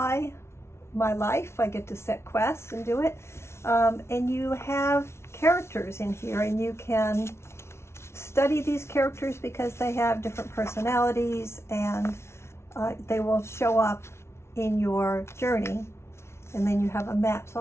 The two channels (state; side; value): late; right; 0.13 ms